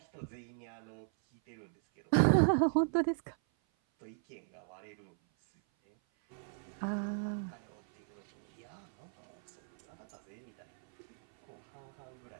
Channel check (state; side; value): silent; left; 53 dB below the other